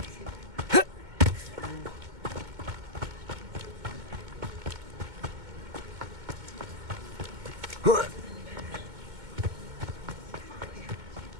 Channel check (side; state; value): left; late; 2.2 ms